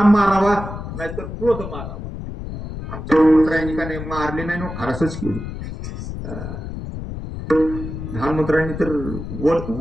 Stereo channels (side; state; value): left; noise; rumble, 8 dB below the sound